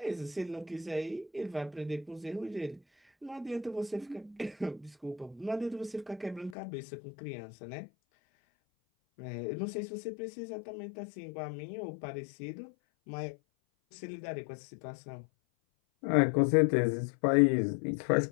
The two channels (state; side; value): drops out; right; at 6.6 s